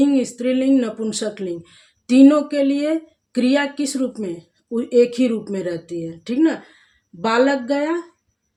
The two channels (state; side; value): identical; both; correlation 1.00